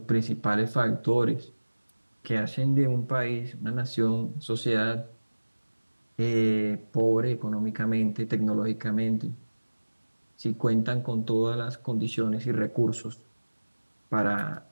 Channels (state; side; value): inverted; both; correlation -1.00